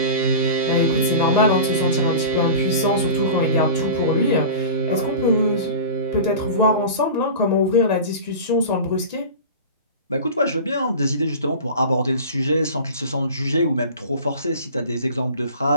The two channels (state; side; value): inverted; both; correlation -0.34